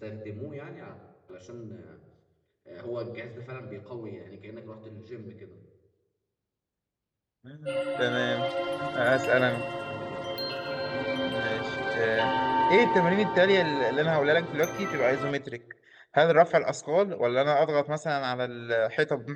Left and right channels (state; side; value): identical; both; correlation 1.00